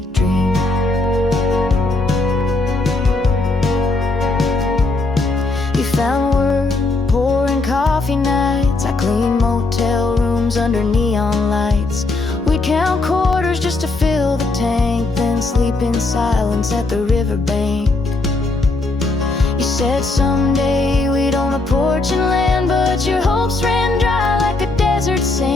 dream. You found work pouring coffee nights. I cleaned motel rooms under neon lights. We'd count quarters just to fill the tank, then sleep in silence at the riverbank. You said someday we'd own a porch and land, but your hopes ran dry like a desert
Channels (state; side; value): quieter; right; 3.2 dB